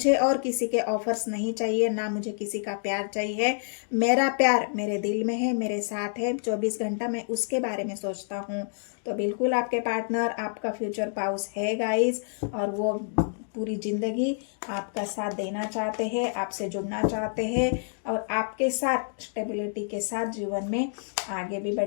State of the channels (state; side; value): silent; right; digital silence